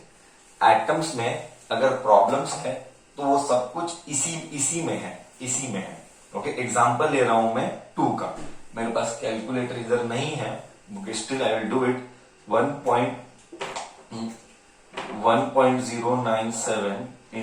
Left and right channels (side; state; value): both; identical; correlation 1.00